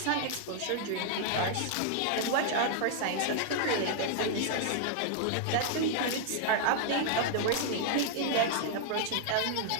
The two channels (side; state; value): both; different; correlation -0.01